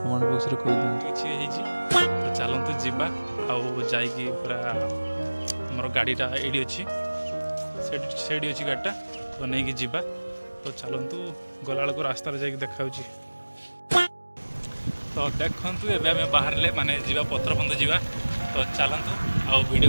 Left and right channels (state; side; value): inverted; both; correlation -1.00